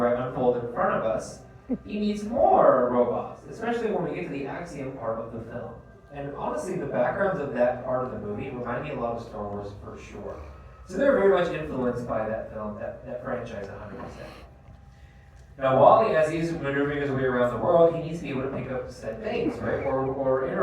unfold in front of us, he meets more robots, especially when we get to the Axiom part of the film. And honestly, the backgrounds of that part of the movie remind me a lot of Star Wars for sure. So they're very much influenced by that film, that franchise 100%. Now, WALL-E, as he's maneuvering his way around the world, he needs to be able to pick up said things, right? Or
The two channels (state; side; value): identical; both; correlation 1.00